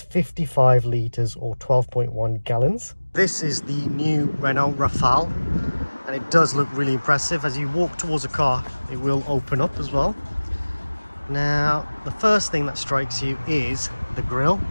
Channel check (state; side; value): inverted; both; correlation -1.00